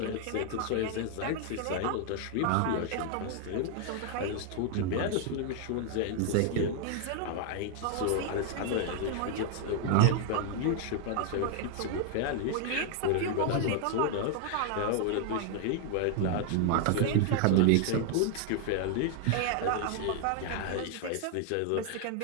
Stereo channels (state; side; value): different; both; correlation 0.00